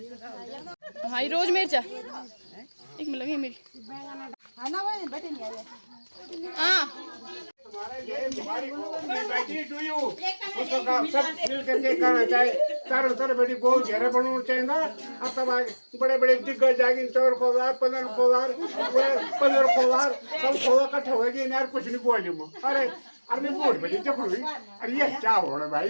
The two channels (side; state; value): both; inverted; correlation -1.00